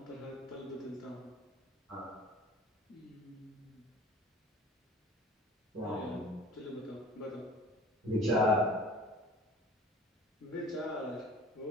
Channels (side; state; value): both; normal; correlation 0.45